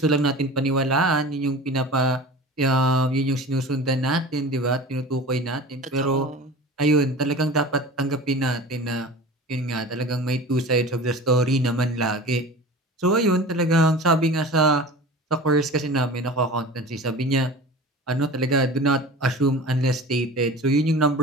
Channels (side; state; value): both; normal; correlation 0.37